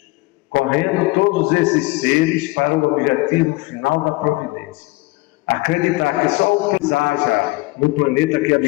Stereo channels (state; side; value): quieter; right; 22.1 dB